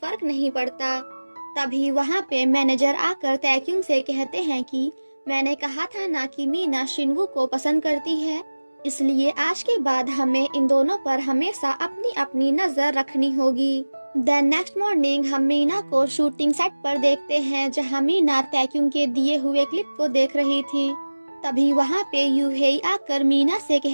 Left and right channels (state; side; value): inverted; both; correlation -1.00